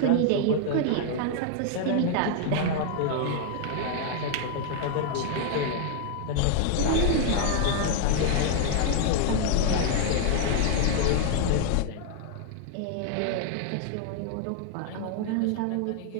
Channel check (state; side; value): different; both; correlation 0.00